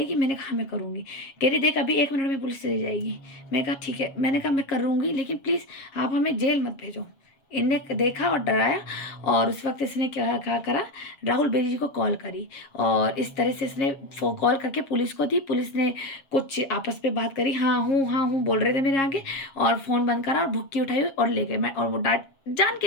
मैंने कहा मैं करूँगी। कह रही देख अभी 1 मिनट में पुलिस चली जाएगी। मैं कहा ठीक है, मैंने कहा मैं करूँगी लेकिन प्लीज़ आप हमें जेल मत भेजो। इनने देखा और डराया और उस वक्त इसने क्या करा, राहुल बेरी जी को कॉल करी और इस तरह से इसने कॉल करके पुलिस को दी। पुलिस ने कुछ आपस में बात करी, हाँ हूँ बोल रहे थे मेरे आगे, और फ़ोन बंद करा और भुक्की उठाई और ले गए। मैं और वो डांट जान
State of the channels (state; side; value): late; right; 7.4 ms